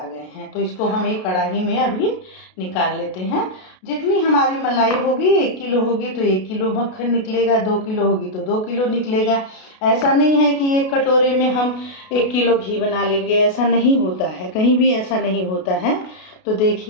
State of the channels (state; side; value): late; right; 32 ms